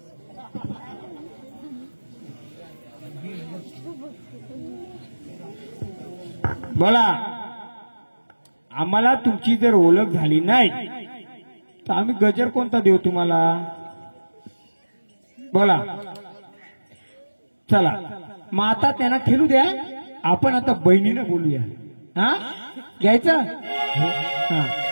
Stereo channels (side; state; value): both; inverted; correlation -1.00